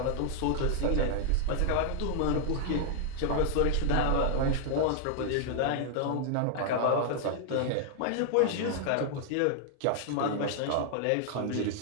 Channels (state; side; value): different; both; correlation 0.00